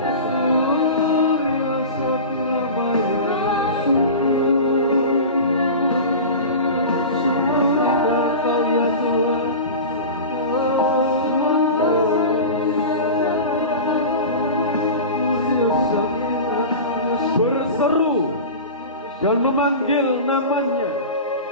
Berseru dan memanggil namanya,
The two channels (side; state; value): both; inverted; correlation -0.30